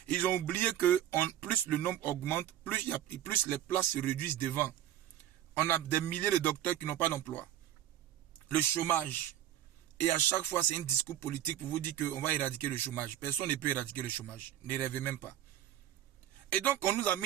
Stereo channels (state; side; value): quieter; left; 11.9 dB